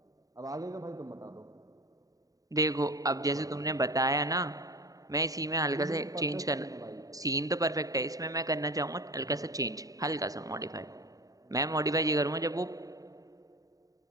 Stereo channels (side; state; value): left; late; 0.17 ms